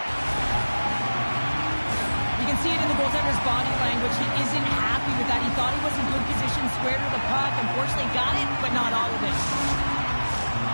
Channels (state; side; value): inverted; both; correlation -1.00